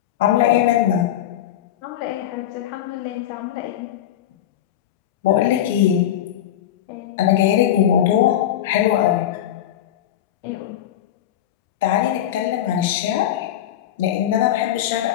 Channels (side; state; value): right; quieter; 11.5 dB